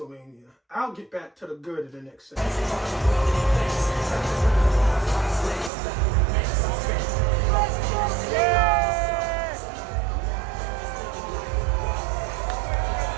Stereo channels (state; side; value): drops out; left; at 5.7 s